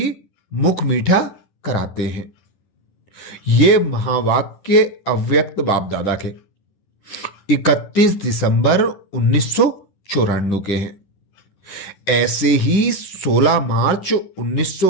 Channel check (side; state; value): right; late; 10 ms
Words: मुख मीठा कराते हैं। ये महावाक्य अव्यक्त बाप दादा के 31 दिसंबर 1994 के हैं। ऐसे ही 16 मार्च